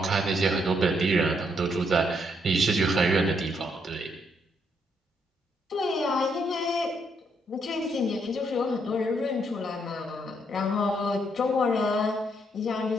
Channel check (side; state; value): both; normal; correlation 0.74